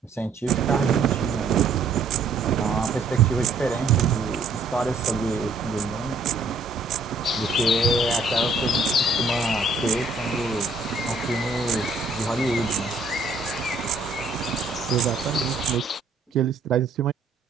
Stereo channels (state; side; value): quieter; left; 3.5 dB